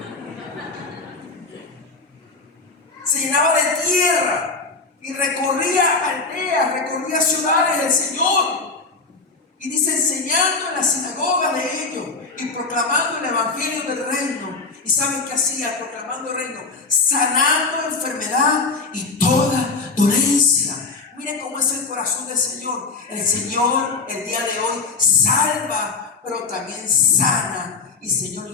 se llenaba de tierra y recorría aldeas, recorría ciudades del Señor. Y dice, enseñando en las sinagogas de ellos y proclamando el evangelio del reino. ¿Y saben qué hacía? Proclamando el reino, sanando enfermedad y toda dolencia. Miren cómo es el corazón del Señor. El Señor el día de hoy salva, pero también sana. Y el Señor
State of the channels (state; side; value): quieter; right; 4.2 dB